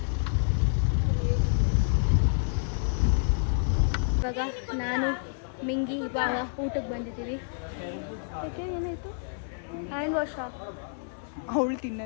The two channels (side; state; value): right; silent; 58 dB below the other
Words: ಇವಾಗ ನಾನು ಮಿಂಗಿ ಬಾವ ಊಟಕ್ಕೆ ಬಂದಿದ್ದೀವಿ. ಓಕೆ ಏನಾಯ್ತು? ಹ್ಯಾಂಡ್ ವಾಶ್ ಅವಳು